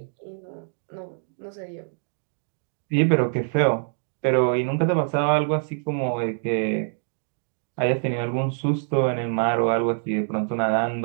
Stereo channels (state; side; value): silent; left; digital silence